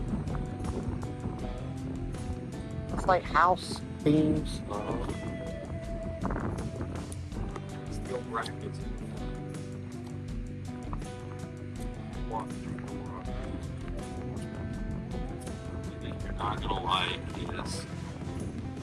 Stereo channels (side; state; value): both; identical; correlation 1.00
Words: It's like house beams. Steel brackets. One thing you're not gonna like is